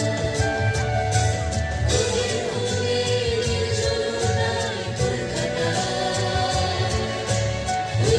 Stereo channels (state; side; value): identical; both; correlation 1.00